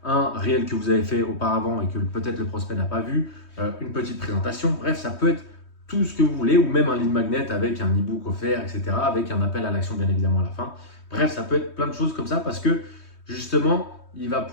un réel que vous avez fait auparavant et que peut-être le prospect n'a pas vu, une petite présentation, bref, ça peut être tout ce que vous voulez, ou même un lead magnet avec un e-book offert, etc., avec un appel à l'action bien évidemment à la fin. Bref, ça peut être plein de choses comme ça parce que justement, il va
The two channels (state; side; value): late; right; 3.2 ms